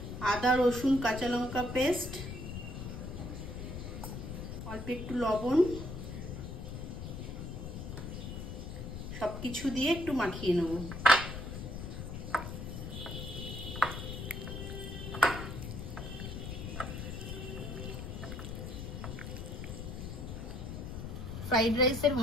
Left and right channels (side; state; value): left; noise; rumble, 7 dB below the sound